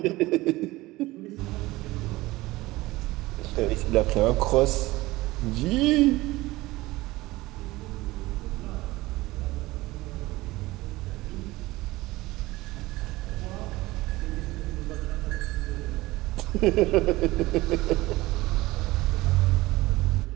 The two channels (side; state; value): left; quieter; 19.3 dB